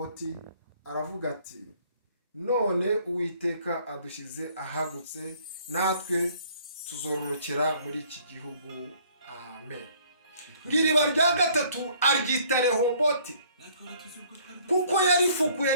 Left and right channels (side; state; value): both; inverted; correlation -0.59